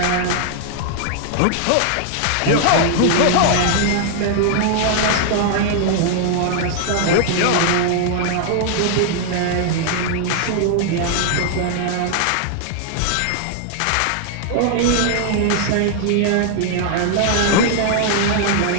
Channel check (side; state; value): both; different; correlation 0.00